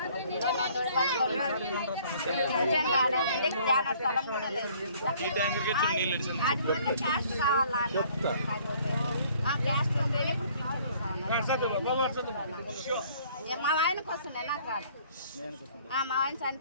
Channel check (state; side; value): inverted; both; correlation -0.58